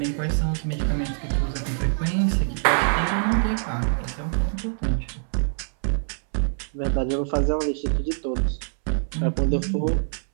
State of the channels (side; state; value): left; silent; 62 dB below the other